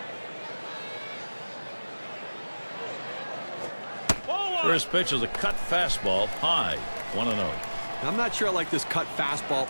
First pitch is a cut fastball high, 1-0. I'm not sure I like this cut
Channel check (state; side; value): inverted; both; correlation -1.00